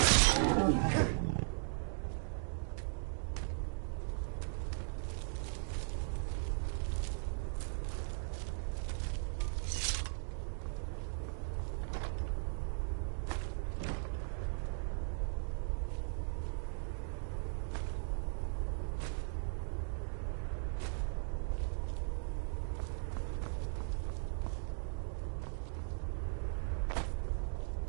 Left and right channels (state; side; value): silent; left; digital silence